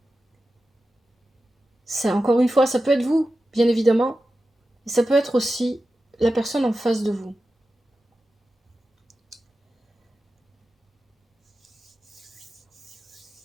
Encore une fois, ça peut être vous, bien évidemment. Et ça peut être aussi la personne en face de vous.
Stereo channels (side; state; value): both; normal; correlation 0.93